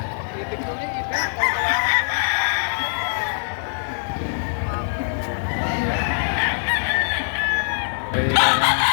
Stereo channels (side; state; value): right; silent; 60 dB below the other